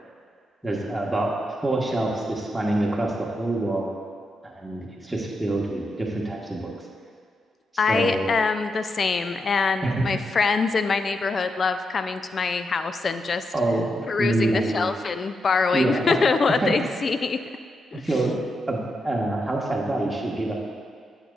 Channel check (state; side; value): normal; both; correlation 0.84